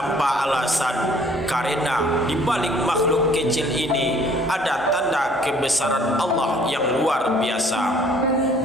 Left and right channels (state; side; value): normal; both; correlation 0.57